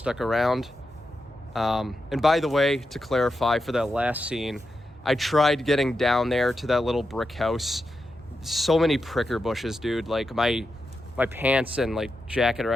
around. And by the way, to clarify for that last scene, I tried getting down there to that little brick house. So many pricker bushes, dude. Like my pants and like jacket are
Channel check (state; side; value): normal; both; correlation 0.88